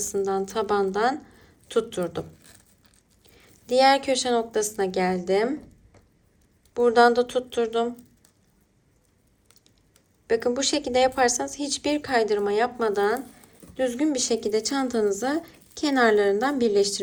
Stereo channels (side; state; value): both; identical; correlation 1.00